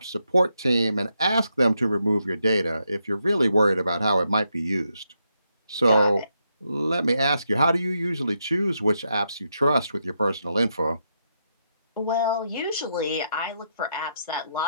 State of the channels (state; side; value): inverted; both; correlation -0.81